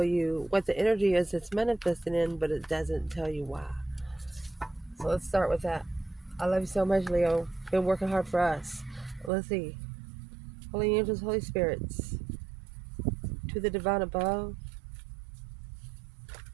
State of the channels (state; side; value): drops out; left; at 9.3 s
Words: you what the energy is it's manifesting in, but it doesn't tell you why. So let's start with that. I love you so much, Leo. Been working hard for us. Let's see. Holy angels, Holy spirits, to the divine above,